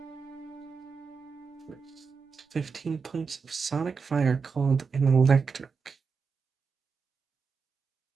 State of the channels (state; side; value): quieter; left; 5.3 dB